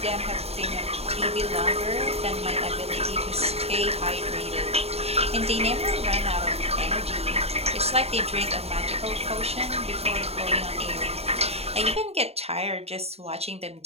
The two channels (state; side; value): late; left; 0.30 ms